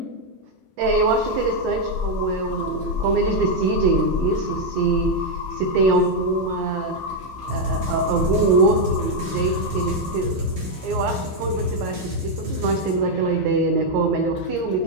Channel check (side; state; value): both; normal; correlation 0.01